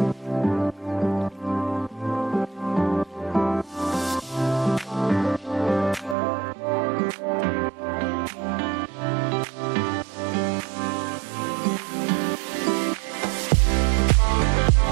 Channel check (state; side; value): drops out; left; at 6.2 s